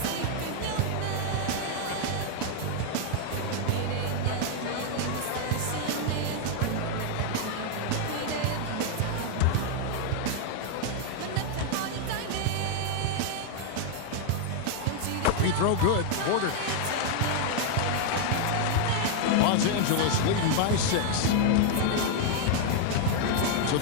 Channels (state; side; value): different; both; correlation 0.00